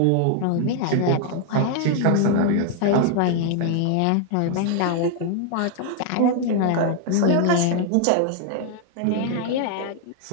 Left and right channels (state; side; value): different; both; correlation 0.00